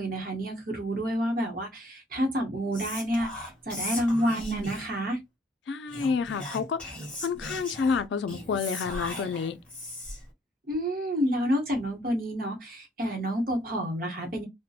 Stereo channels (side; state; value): both; normal; correlation 0.62